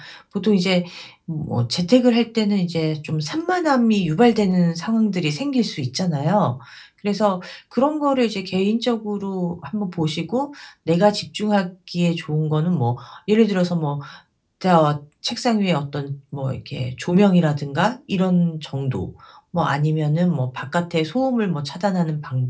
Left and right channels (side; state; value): both; identical; correlation 1.00